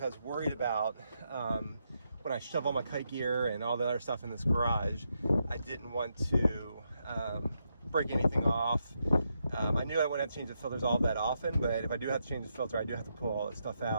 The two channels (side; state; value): both; inverted; correlation -0.82